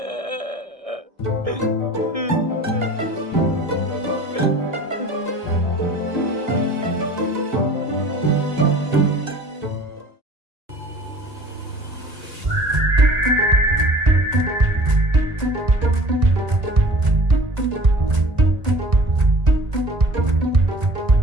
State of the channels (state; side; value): late; left; 1.6 ms